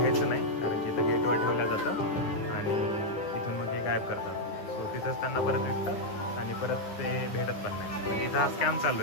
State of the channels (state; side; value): late; right; 10 ms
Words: नाही, कारण की इथं गेटवर ठेवलं जातं आणि तिथून मग ते गायब करतात. तो तिथंच त्यांना परत विकतात आणि परत ते भेटत पण नाही. म्हणजे इथं हा स्कॅम चालू